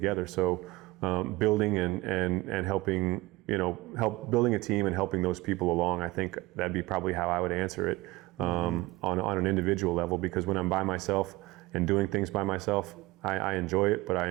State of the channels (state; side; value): quieter; left; 20.8 dB